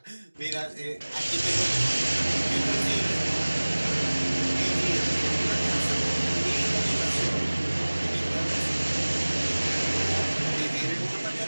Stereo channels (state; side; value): inverted; both; correlation -1.00